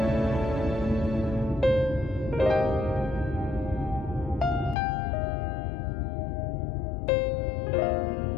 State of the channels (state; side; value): drops out; right; at 4.8 s